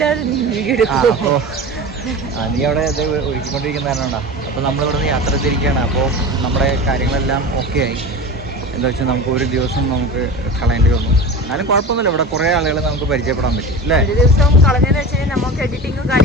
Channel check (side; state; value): both; normal; correlation 0.31